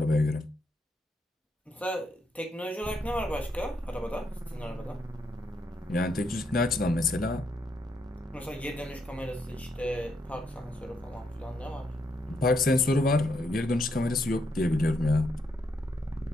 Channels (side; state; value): both; normal; correlation 0.78